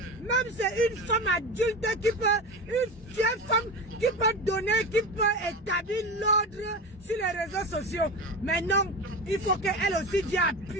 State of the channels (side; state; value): both; normal; correlation 0.25